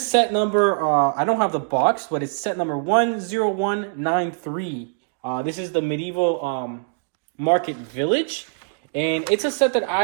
set number. I don't have the box, but it's set number 10193. This is the Medieval Market Village, and it's a set that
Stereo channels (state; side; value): silent; left; digital silence